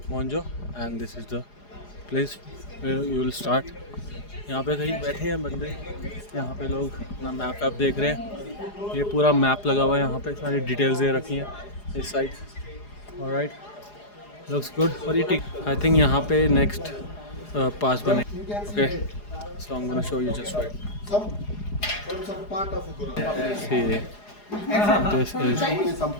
मोन्जो and this is the place where you will start. यहाँ पे कहीं बैठे हैं बंदे, यहाँ पे लोग अपना मैप वैप देख रहे हैं। ये पूरा मैप लगा हुआ है, यहाँ पे सारी डिटेल्स दे रखी हैं इस साइड। Alright, looks good. और ये टिक आई थिंक यहाँ पे नेक्स्ट पास बने। Okay, so I am gonna show you just right. See, this is some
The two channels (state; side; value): late; right; 4.8 ms